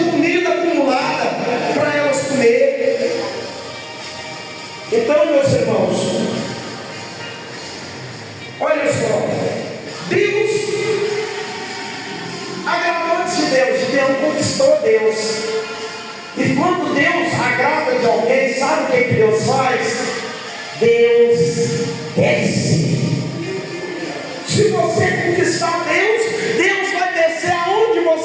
comida acumulada, para elas comer. Então, meus irmãos, olha só, Deus agradou de Deus, Deus conquistou Deus. E quando Deus agrada de alguém, sabe o que Deus faz? Deus desce. Se você conquistar Deus, Deus vai descer aonde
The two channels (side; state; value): both; identical; correlation 1.00